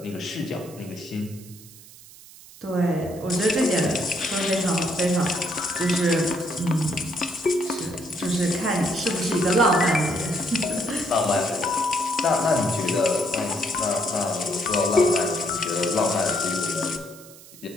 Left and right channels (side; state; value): right; noise; hiss, 20 dB below the sound